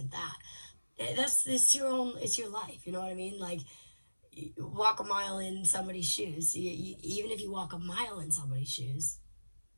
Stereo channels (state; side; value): inverted; both; correlation -1.00